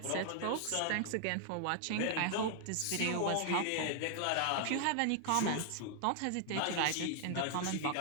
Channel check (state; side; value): different; both; correlation 0.00